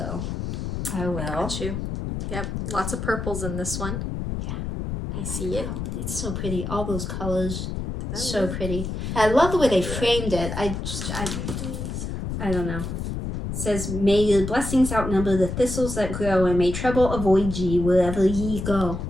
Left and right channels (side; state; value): left; noise; rumble, 4 dB below the sound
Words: I will. Got you. Yep, lots of purples in this one. I see it. It's so pretty. All those colors, so pretty. I love the way they framed it. I don't know. It says, may your blessings outnumber the thistles that grow, and may trouble avoid ye wherever ye go.